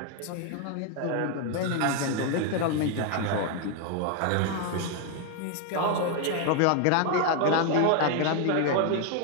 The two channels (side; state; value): both; different; correlation 0.01